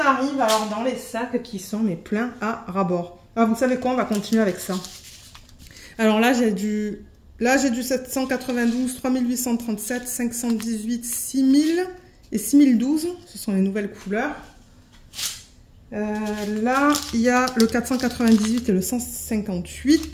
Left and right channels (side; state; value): both; identical; correlation 1.00